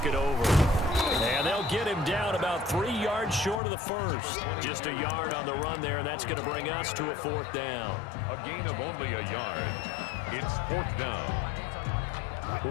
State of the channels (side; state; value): right; drops out; at 3.6 s